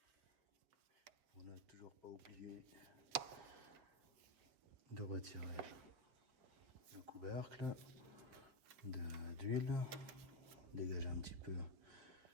pour ne toujours pas oublier de retirer le couvercle d'huile. Dégager un petit peu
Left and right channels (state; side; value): late; left; 7.5 ms